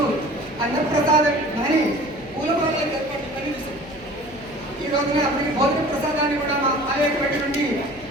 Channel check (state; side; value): noise; right; hum, 22 dB below the sound